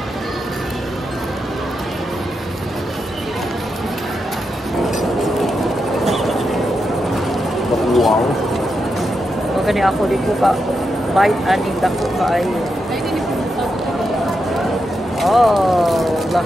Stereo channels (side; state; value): both; normal; correlation 0.85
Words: Wow. Magani ako di ko ka bite aning dako kaayo. Oh,